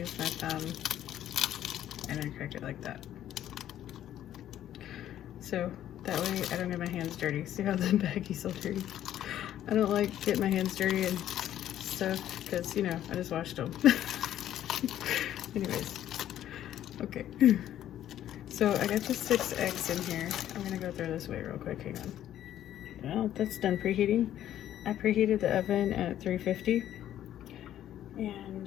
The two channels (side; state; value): right; quieter; 11.7 dB